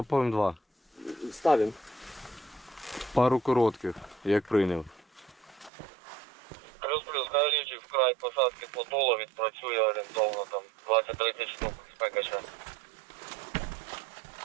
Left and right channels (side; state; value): left; drops out; at 5.7 s